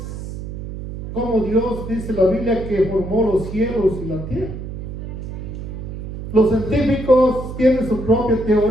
como Dios dice la Biblia que formó los cielos y la tierra. Los científicos tienen su propia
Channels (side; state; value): right; noise; hum, 8 dB below the sound